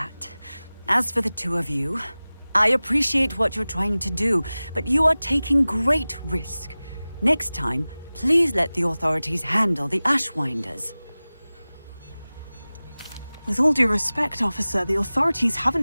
As for the two of you, I appreciate what you're trying to do, but you are taking great risk. Next time, please let the authorities handle the Ashwinders. With all due respect, officer, the authorities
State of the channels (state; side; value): inverted; both; correlation -0.98